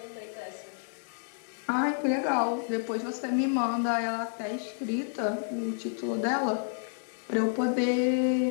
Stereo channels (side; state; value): right; silent; digital silence